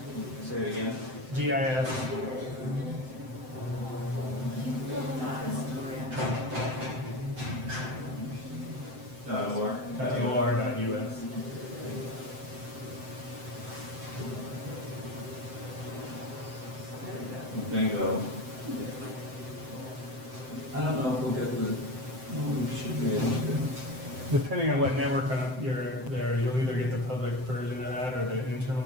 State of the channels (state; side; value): late; left; 7.7 ms